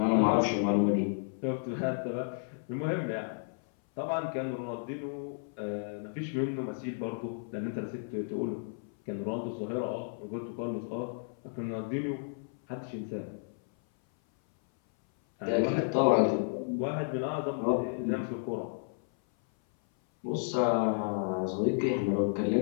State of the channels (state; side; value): silent; right; 56 dB below the other